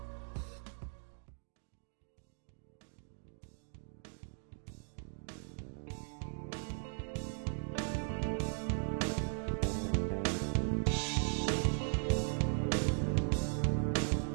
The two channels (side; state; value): left; silent; 52 dB below the other